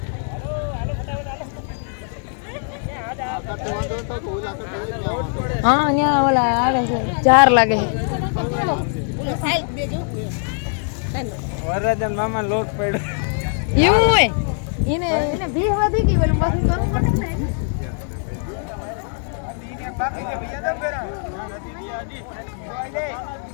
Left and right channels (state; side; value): silent; right; 56 dB below the other